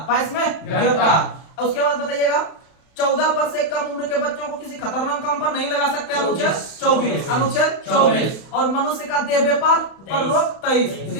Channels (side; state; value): right; late; 31 ms